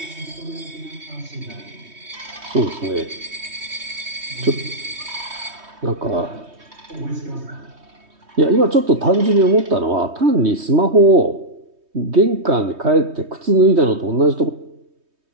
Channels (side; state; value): left; late; 3.2 ms